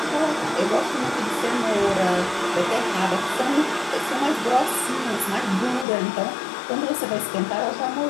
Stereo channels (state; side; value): drops out; right; at 5.9 s